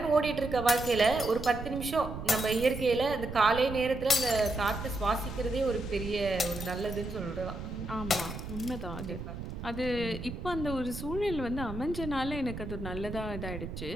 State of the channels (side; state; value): right; noise; rumble, 8 dB below the sound